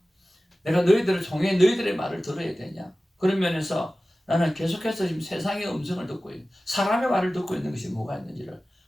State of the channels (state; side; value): normal; both; correlation 0.96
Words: 내가 너희들을 통해 너희들의 말을 들어야 되냐? 그런 면에서 나는 계속해서 지금 세상의 음성을 듣고 있는, 사람의 말을 듣고 있는 것이 뭐가 있는지를